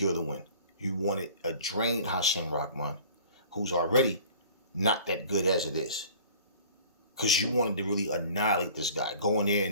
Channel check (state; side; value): inverted; both; correlation -0.47